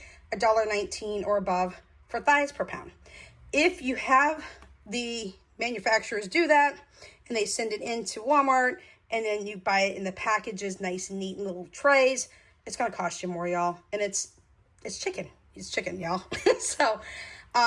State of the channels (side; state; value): both; identical; correlation 1.00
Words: $1.19 or above for thighs per pound. If you have the manufacturers do that and they send it into Walmart, and then you buy it in the packages, nice and neat in little trays, it's going to cost you more, y'all. And it's chicken. It's chicken, y'all. So,